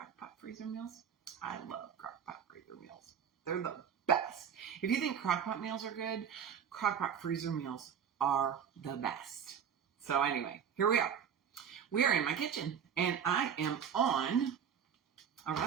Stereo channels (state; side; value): quieter; left; 7.9 dB